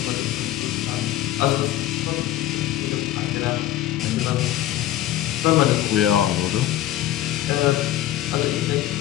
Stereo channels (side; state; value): right; quieter; 13.5 dB